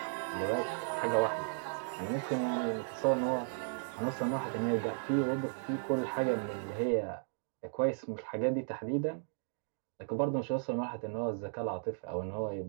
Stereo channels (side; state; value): left; silent; digital silence